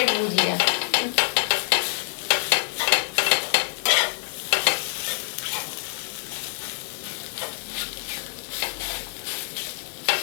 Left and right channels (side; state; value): right; silent; digital silence